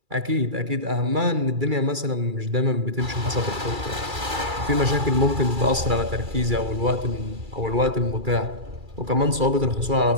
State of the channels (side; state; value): left; late; 2.3 ms